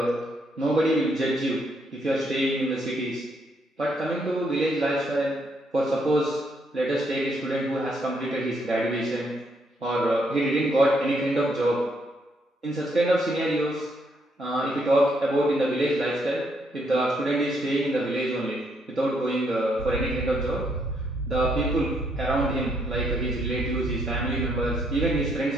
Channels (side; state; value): both; normal; correlation 0.73